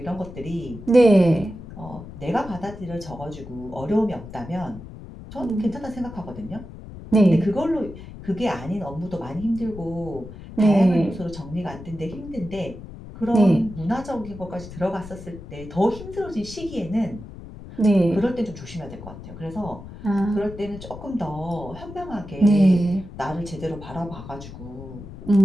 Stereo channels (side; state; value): left; noise; rumble, 14 dB below the sound